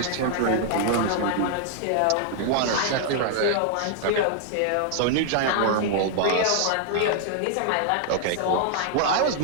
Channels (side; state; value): both; different; correlation 0.00